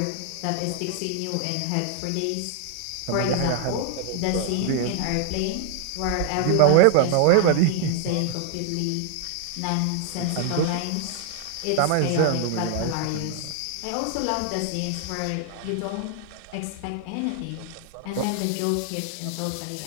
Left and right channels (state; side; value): different; both; correlation 0.00